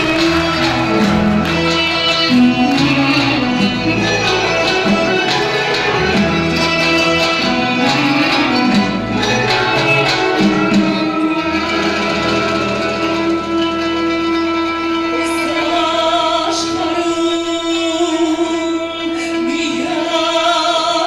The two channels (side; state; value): both; identical; correlation 1.00